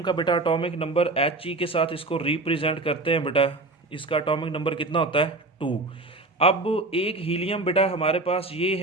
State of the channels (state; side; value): quieter; left; 3.1 dB